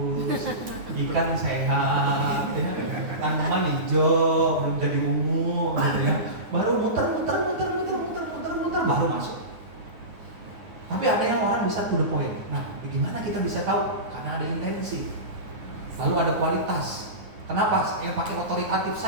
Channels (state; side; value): late; left; 9.7 ms